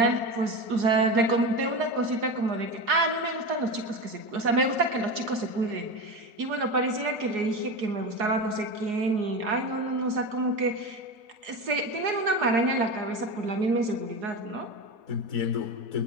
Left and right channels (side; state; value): left; late; 4.8 ms